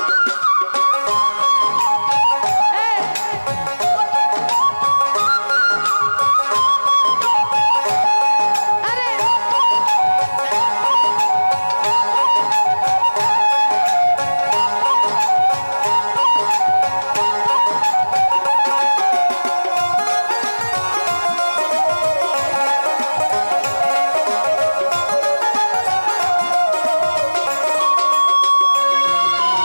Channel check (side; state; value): both; inverted; correlation -1.00